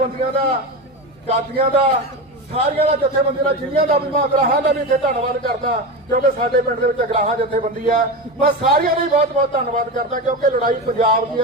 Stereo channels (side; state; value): both; normal; correlation 0.21